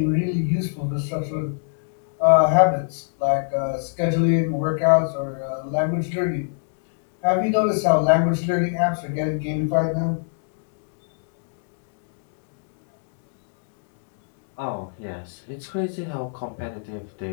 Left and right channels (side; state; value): right; silent; digital silence